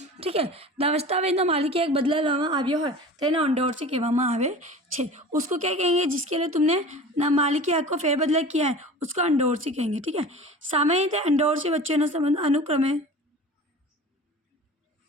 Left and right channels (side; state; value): both; normal; correlation 0.38